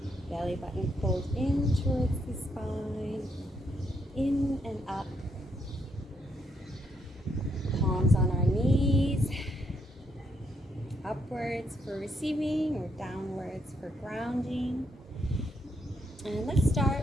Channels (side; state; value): both; normal; correlation 0.76